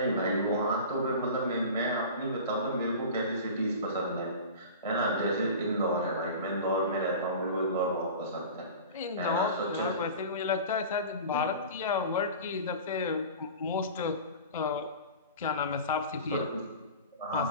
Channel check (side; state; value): both; inverted; correlation -0.36